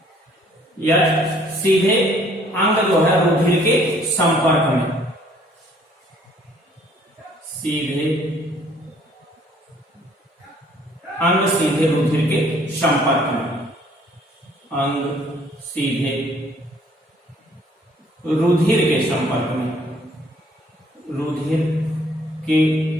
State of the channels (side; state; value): both; normal; correlation 0.60